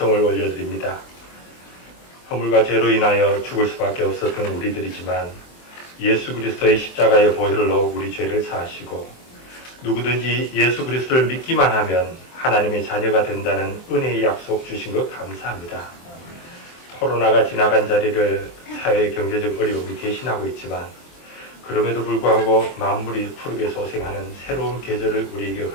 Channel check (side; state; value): right; late; 23 ms